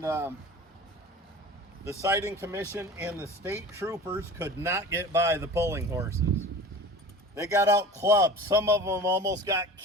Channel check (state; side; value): normal; both; correlation 0.38